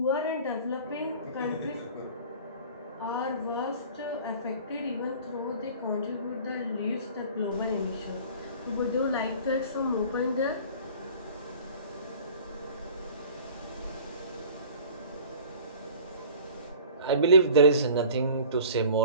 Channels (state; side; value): inverted; both; correlation -0.45